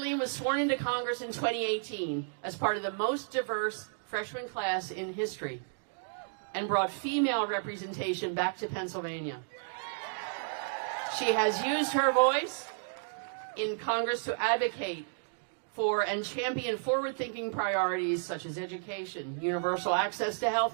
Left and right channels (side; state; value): left; silent; digital silence